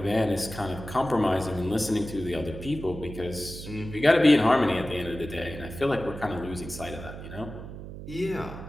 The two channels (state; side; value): noise; right; hum, 11 dB below the sound